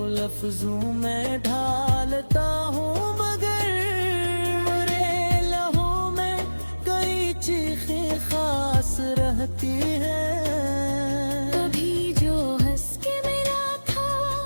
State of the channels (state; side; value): inverted; both; correlation -1.00